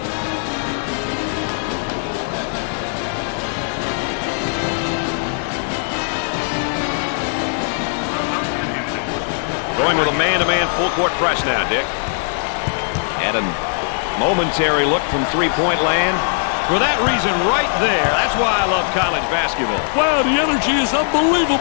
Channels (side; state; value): right; silent; 66 dB below the other